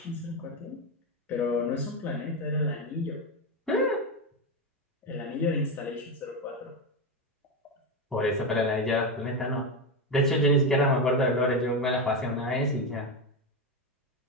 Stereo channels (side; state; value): both; normal; correlation 0.12